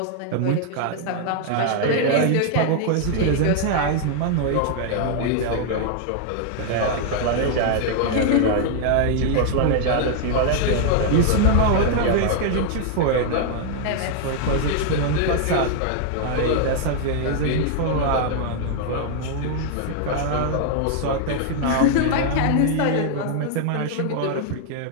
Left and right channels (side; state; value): both; different; correlation 0.00